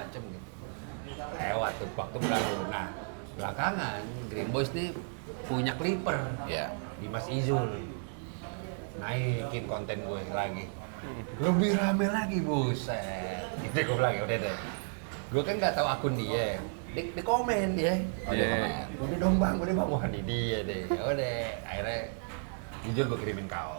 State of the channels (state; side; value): silent; left; 56 dB below the other